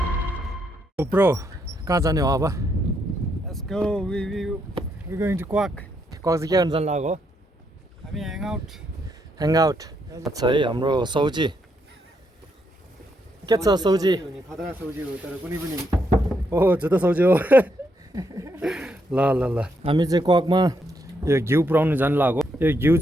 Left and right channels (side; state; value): both; normal; correlation 0.77